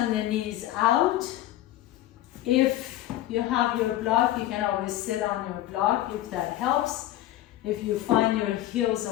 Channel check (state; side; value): quieter; right; 14.2 dB